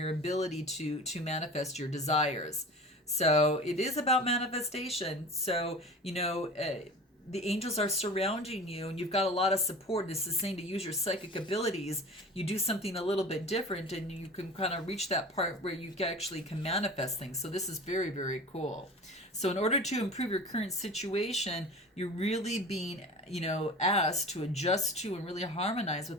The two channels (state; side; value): normal; both; correlation 0.37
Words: ability to manifest your desires. So it is about manifestation. So, the angels are surrounding you, and you've got a lot of support. This is saying to use your psychic abilities. You do something a little bit different, and you can kind of reach that part where you actually can manifest things. So this is very, very cool. So in order to improve your current situation, you're really being, asked to adjust to and really harmonize